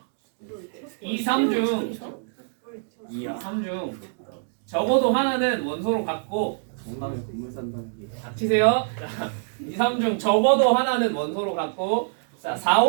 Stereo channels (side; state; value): left; silent; digital silence